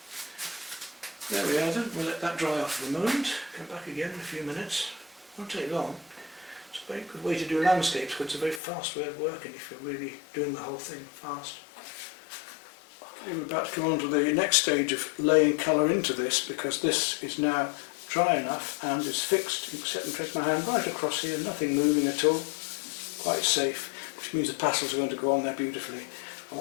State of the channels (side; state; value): right; drops out; at 8.6 s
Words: There we are then, we'll let that dry off for a moment. Come back again in a few minutes. Won't take long. It's a very good way to do landscapes, because it's a very fast way of working if you're really doing the whole thing fast. Okay, we're about to come on to the next stage of laying colour into this, because this is now dry enough and it's fixed. You can set and trace my hand right across here, nothing moving at all, quite safe, which means the pastels are going to go on there beautifully. I